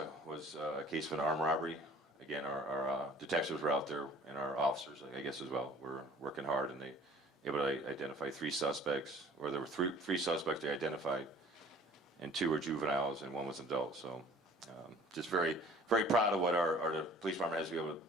was a case of an armed robbery. Again, our detectives were out there, and our officers, I guess, as well, were working hard, and they able to identify 3 suspects, or there were three suspects they identified, and 2 were juveniles, and 1 was an adult. So just very, very proud of what our police department has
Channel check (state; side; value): normal; both; correlation 0.50